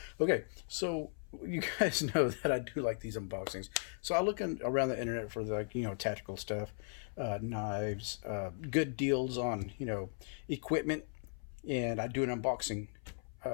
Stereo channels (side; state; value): right; silent; 53 dB below the other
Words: Okay, so you guys know that I do like these unboxings. So I look around the internet for tactical stuff, knives, good deals on, equipment, and I do an unboxing